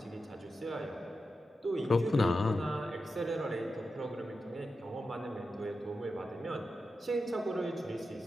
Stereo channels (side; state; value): both; normal; correlation 0.90